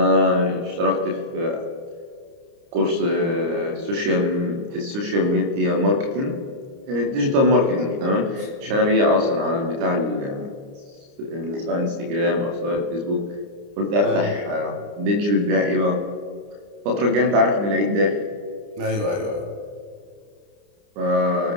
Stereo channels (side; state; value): left; late; 29 ms